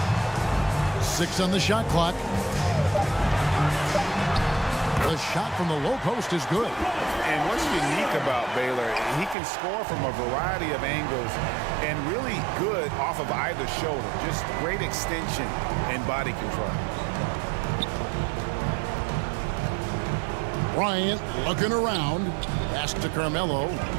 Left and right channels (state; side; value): drops out; left; at 9.3 s